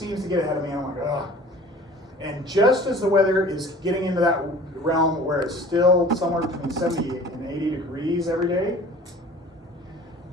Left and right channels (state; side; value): normal; both; correlation 0.46